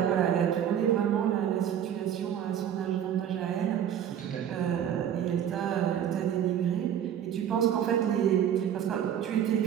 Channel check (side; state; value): left; quieter; 9.7 dB